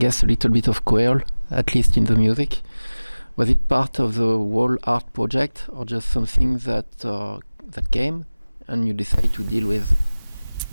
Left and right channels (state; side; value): inverted; both; correlation -1.00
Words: a little bit of Creole, at least in the music. Was it part of the whole art project, or just something that came and you decided to deal with?